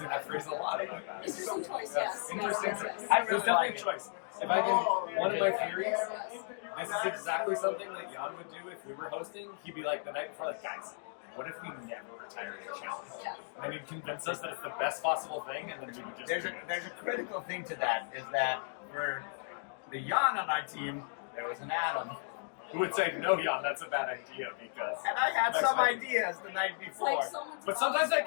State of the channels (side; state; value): right; silent; digital silence